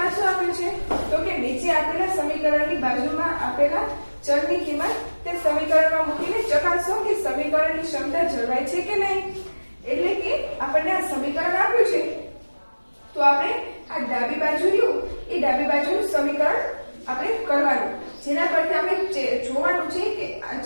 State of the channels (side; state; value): both; inverted; correlation -1.00